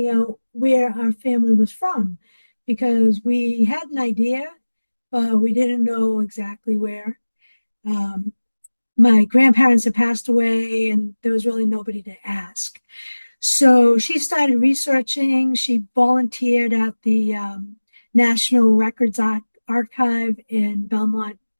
out where our family was from because we had an idea, but we didn't know exactly where. My grandparents had passed away and there was really nobody to ask. So she started researching. She volunteered at the National Records Archive in Belmont,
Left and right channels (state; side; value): inverted; both; correlation -1.00